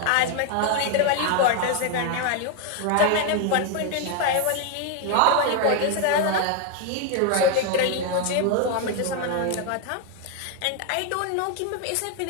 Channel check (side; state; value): both; different; correlation 0.01